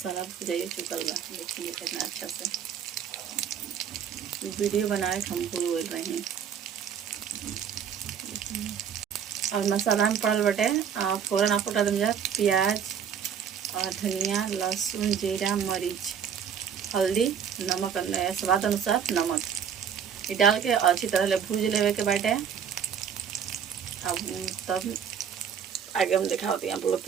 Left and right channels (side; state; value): left; quieter; 7.9 dB